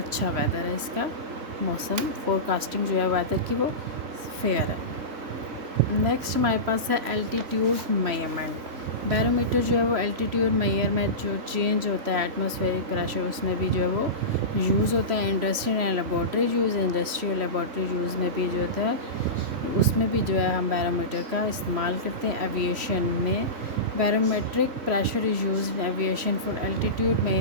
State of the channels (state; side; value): late; left; 3.1 ms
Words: वेदर है, इसका मौसम फोरकास्टिंग जो है वेदर की वो फेयर है। नेक्स्ट हमारे पास है एल्टीट्यूड मेजरमेंट। बैरोमीटर जो है वो एल्टीट्यूड मेजरमेंट जो चेंज होता है एटमॉस्फेरिक प्रेशर उसमें भी जो है वो यूज़ होता है। Industrial and laboratory use, industrial laboratory use में भी जो होता है उसमें भी जो है हम बैरोमीटर का इस्तेमाल करते हैं। एविएशन में barometric pressure is use in aviation for altitude